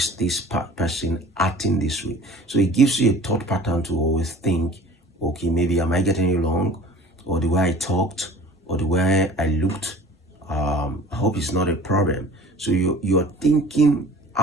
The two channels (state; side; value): normal; both; correlation 0.45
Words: this person acting this way? So it gives you a thought pattern to always think, okay, maybe am I getting it wrong? Or the way I talked, or the way I looked, I hope it's not a problem. So you are thinking